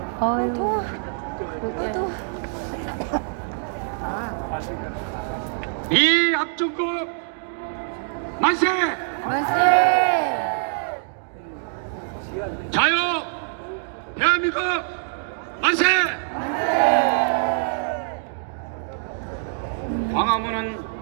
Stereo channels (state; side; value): silent; left; digital silence